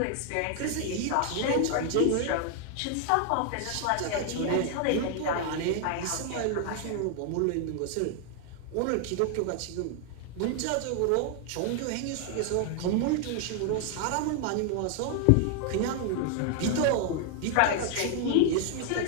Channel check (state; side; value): different; both; correlation 0.00